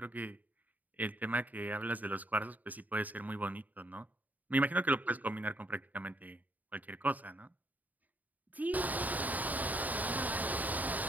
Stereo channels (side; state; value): left; late; 0.079 ms